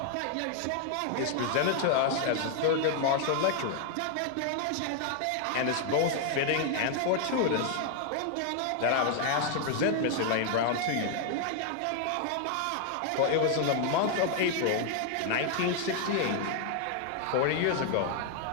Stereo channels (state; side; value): different; both; correlation 0.00